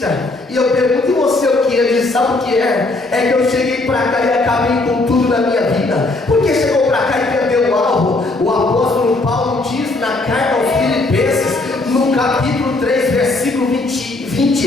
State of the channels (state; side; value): quieter; right; 3.1 dB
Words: E eu pergunto: e você o que? Ele diz: sabe o que é? É que eu cheguei para cá e acabei com tudo na minha vida. Porque chegou para cá e perdeu o alvo. O apóstolo Paulo diz na carta aos Filipenses, no capítulo 3, versículo